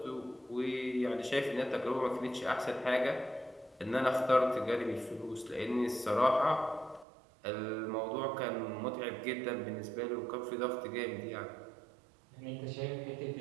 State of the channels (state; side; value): drops out; left; at 7.1 s